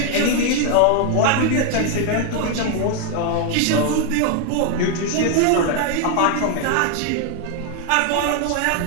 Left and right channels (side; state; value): both; different; correlation 0.01